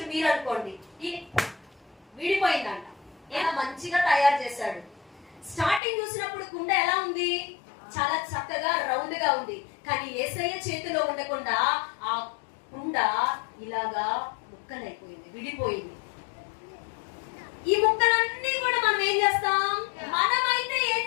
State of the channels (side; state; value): right; drops out; at 5.8 s